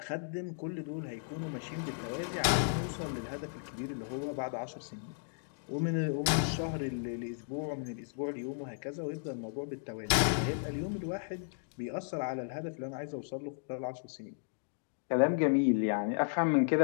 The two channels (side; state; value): right; silent; digital silence